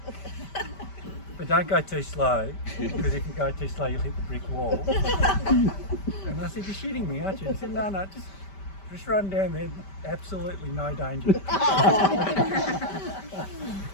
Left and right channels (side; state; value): right; late; 5.1 ms